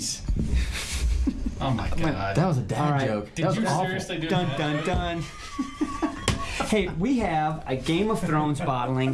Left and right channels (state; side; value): identical; both; correlation 1.00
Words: Oh my god. That was a dad All right. joke. Did That was you awful. seriously do Dun that? dun dun. Hey, we have a Game of Thrones bottling